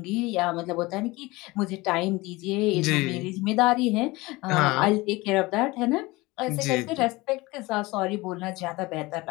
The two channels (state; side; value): quieter; right; 21.9 dB